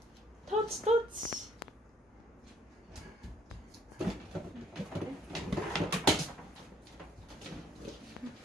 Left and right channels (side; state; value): both; normal; correlation 0.63